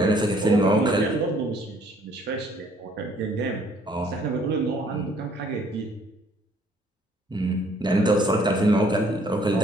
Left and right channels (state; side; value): normal; both; correlation 0.62